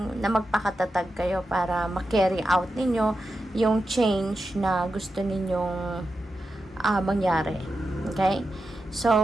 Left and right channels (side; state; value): both; normal; correlation 0.89